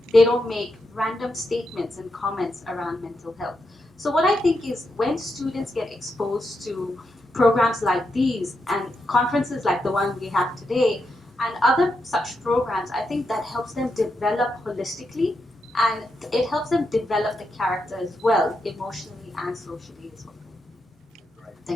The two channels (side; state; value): both; normal; correlation 0.84